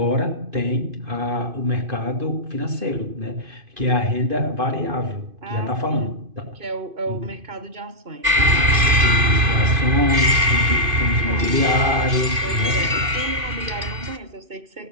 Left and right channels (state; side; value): late; left; 2.5 ms